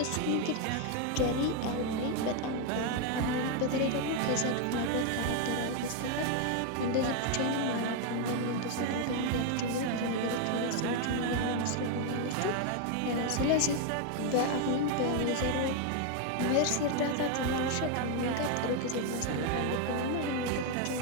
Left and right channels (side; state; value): both; different; correlation 0.01